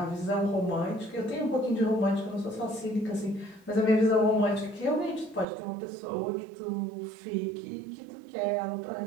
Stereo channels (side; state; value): left; drops out; at 5.5 s